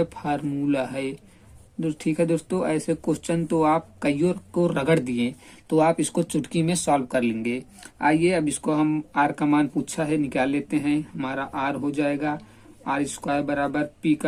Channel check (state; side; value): identical; both; correlation 1.00